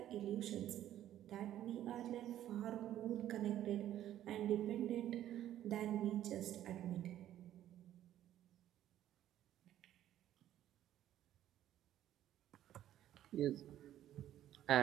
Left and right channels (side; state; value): left; quieter; 12.1 dB